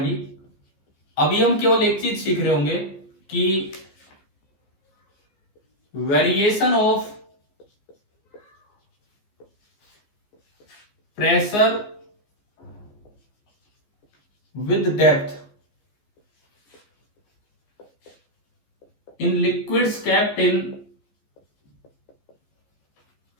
अभी हम केवल एक चीज सीख रहे होंगे कि variation of pressure with depth in liquids kept in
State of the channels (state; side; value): late; right; 14 ms